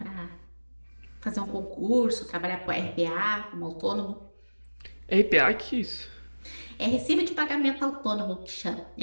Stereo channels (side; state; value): both; inverted; correlation -1.00